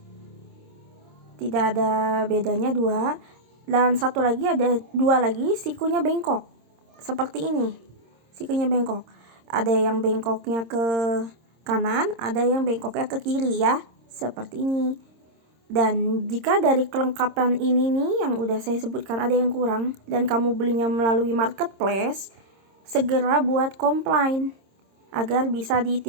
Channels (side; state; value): left; late; 26 ms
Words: tidak ada bedanya 2. Dan satu lagi ada 2 lagi sikunya bengkok seperti ini. Sikunya bengkok. Ada yang bengkoknya ke kanan, ada yang bengkoknya ke kiri ya, seperti ini. Dan jika dari kelengkapan ini nih yang udah saya sebutkan ada yang kurang dan kamu belinya melalui marketplace, segera buat komplain agar bisa